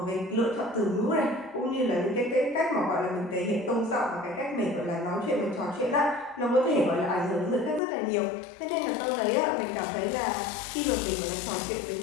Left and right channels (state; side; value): drops out; right; at 7.8 s